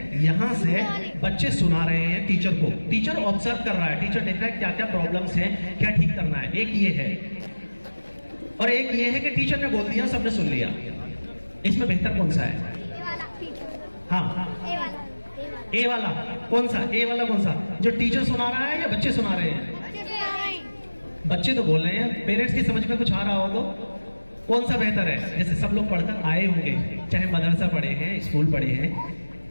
यहां से बच्चे सुना रहे हैं टीचर को। टीचर ऑब्जर्व कर रहा है, टीचर देख रहा है क्या क्या प्रॉब्लम्स हैं, क्या ठीक करना है। एक ये है और एक ये है कि टीचर ने बोल दिया, सबने सुन लिया। इसमें बेहतर कौन सा है? हाँ, ए वाला कौन सा? ए वाला कौन सा, जो टीचर सुना रहा है या बच्चे सुना रहे हैं? बच्चे तो बोल रहे हैं। पेरेंट्स की समझ में कुछ आ रहा हो तो कौन सा बेहतर है? जैसे सब लोग पढ़कर आए होंगे, चाहे मदरसा पढ़े हैं, स्कूल पढ़े हैं।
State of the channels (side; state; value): both; inverted; correlation -1.00